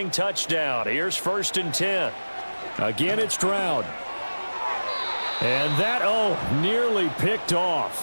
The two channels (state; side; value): inverted; both; correlation -1.00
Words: touchdown. Here's 1st and 10. Again, it's Stroud. And that, nearly picked